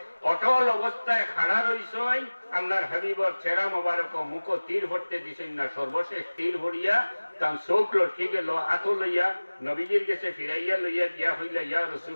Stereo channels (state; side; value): inverted; both; correlation -1.00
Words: অটল অবস্থায় খাড়া রইছে আল্লাহর হাবিবর চেহারা মোবারক মুখ তীর ভরতে দিছেন না। সর্বশেষ তীর ভরিয়া তার চোখ লটকি গেল, আতো লইয়া নবীজির গেছে ফিরাইয়া লইয়া গিয়া হইলা ইয়া